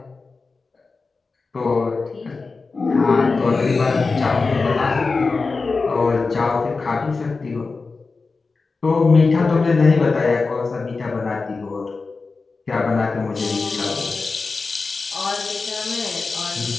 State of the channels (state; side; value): quieter; right; 4.1 dB